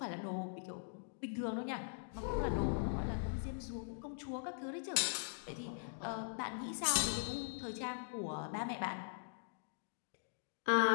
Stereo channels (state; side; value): silent; right; digital silence